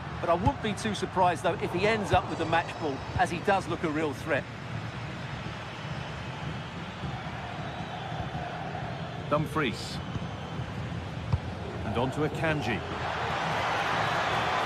But I wouldn't be too surprised, though, if he ends up with the match ball, as he does look a real threat. Dumfries. And on to Akanji.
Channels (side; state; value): both; identical; correlation 1.00